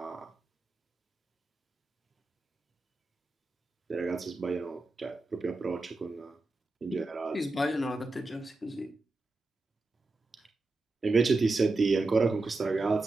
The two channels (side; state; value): left; quieter; 3.2 dB